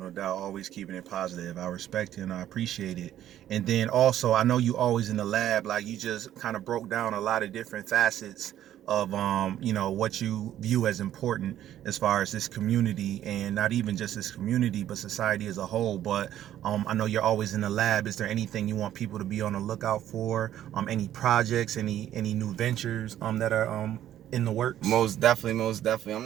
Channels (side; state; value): left; quieter; 11.8 dB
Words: no doubt. Always keeping it positive. I respect it and I appreciate it. And then also, I know you always in the lab. Like, you just kind of broke down a lot of different facets of what you view as important as far as this community, and not even just this community, but society as a whole. But I know you're always in the lab. Is there anything you want people to be on the lookout for? Any projects, any new ventures that are in the works? Most definitely. I'm